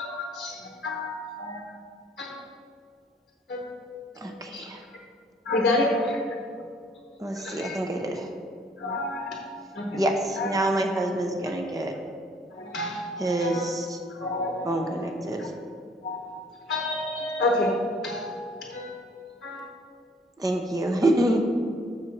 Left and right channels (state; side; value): normal; both; correlation 0.59